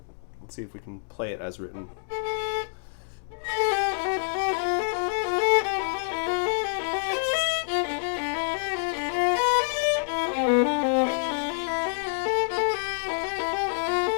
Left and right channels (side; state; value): right; silent; digital silence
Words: let's see if we can play it as written.